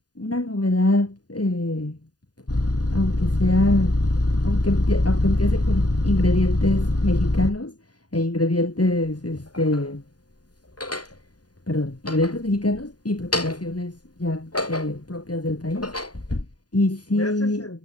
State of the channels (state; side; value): late; right; 0.69 ms